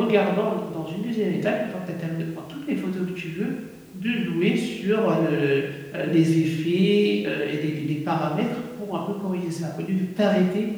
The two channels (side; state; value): both; identical; correlation 1.00